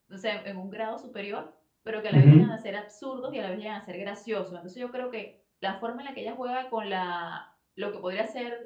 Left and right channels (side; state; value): both; identical; correlation 1.00